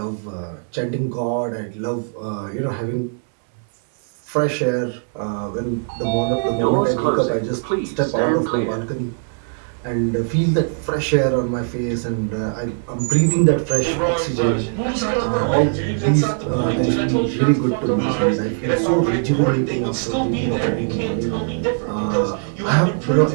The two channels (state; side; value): silent; left; digital silence